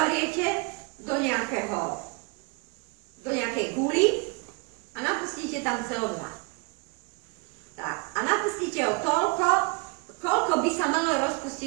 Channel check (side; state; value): left; quieter; 31.4 dB